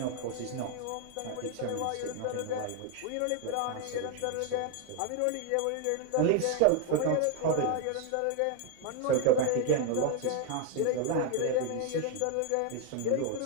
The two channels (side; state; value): both; different; correlation 0.01